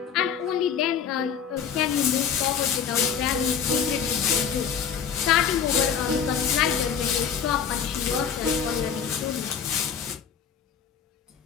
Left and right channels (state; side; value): quieter; right; 7.6 dB